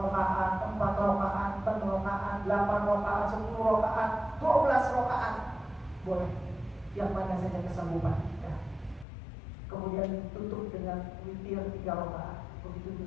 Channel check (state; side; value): drops out; right; at 9.1 s